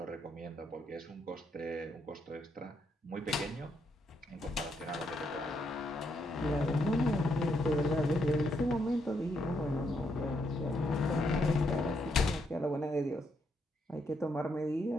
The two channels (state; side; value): normal; both; correlation 0.77